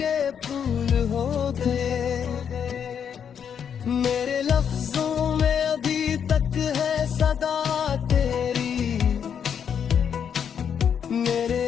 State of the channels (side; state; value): right; quieter; 7.9 dB